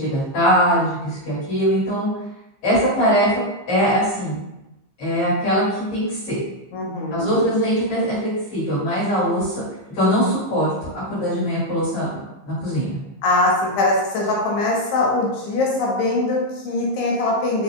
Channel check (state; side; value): late; right; 15 ms